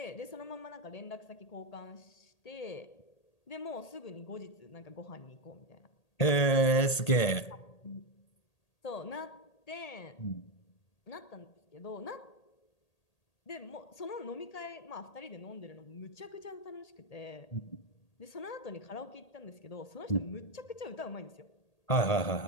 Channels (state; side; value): late; right; 1.8 ms